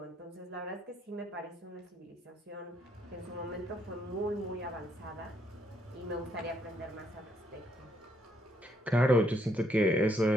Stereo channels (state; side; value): normal; both; correlation 0.73